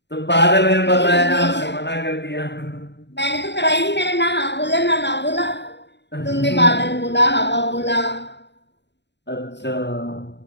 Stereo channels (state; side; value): late; right; 0.51 ms